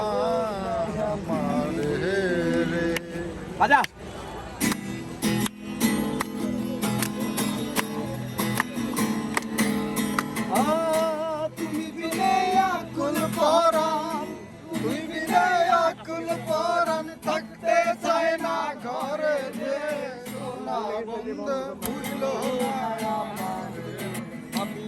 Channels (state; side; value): identical; both; correlation 1.00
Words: আমার রে বাজা তুমি বিনে আকুল পরাণ তুই বিনে আকুল পরাণ থাকতে চায় না ঘরে যে সোনা বন্ধু ভুইল না আমার আমি